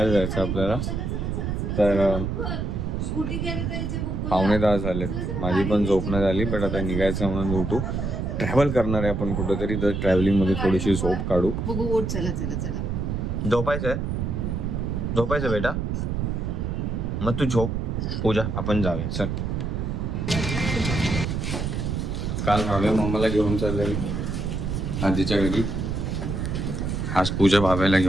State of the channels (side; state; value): right; noise; rumble, 2 dB below the sound